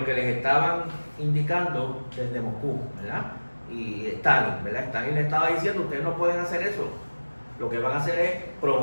que les estaban indicando desde Moscú, ¿verdad? Y Stalin, ¿verdad? Stalin le estaba diciendo, ustedes no pueden hacer eso. Lo que van a hacer es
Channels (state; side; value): inverted; both; correlation -1.00